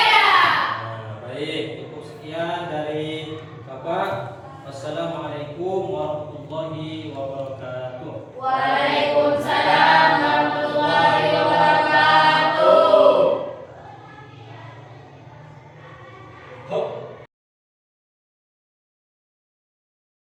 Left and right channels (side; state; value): both; identical; correlation 1.00